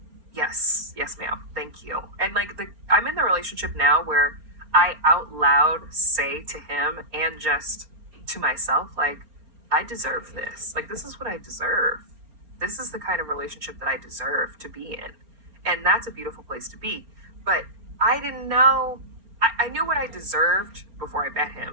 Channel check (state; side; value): late; left; 4.3 ms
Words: yes, ma'am, thank you. And like I'm in the relationship now where I out loud say to him and just to myself, like, I deserve this. Like, this is what I deserve. This is the kind of relationship that I deserve to be in. And that's a beautiful place to be. But I didn't know, I knew what I deserved before I met